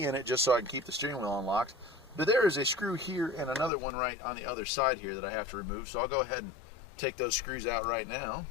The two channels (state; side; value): drops out; right; at 3.7 s